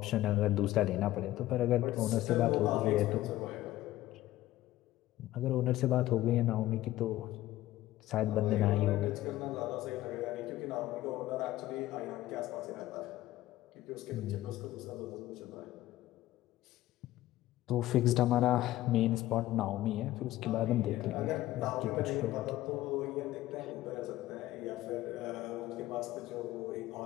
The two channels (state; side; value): quieter; right; 15.4 dB